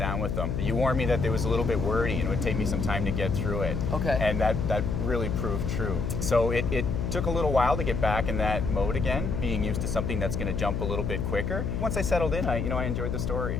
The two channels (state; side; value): noise; left; hum, 1 dB below the sound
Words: with them, you warned me that it was a little bit wordy and it would take me some time to get through it. Okay. And that really proved true. So it took a little while to get back in that mode again, being used to something that's going to jump a little bit quicker. Once I settled in, I enjoyed the